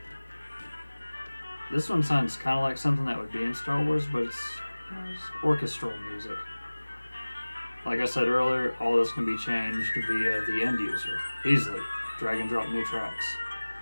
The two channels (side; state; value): both; inverted; correlation -1.00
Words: This one sounds kind of like something that would be in Star Wars, but it's orchestral music. Like I said earlier, all this can be changed via the end user. Easily. Drag and drop new tracks.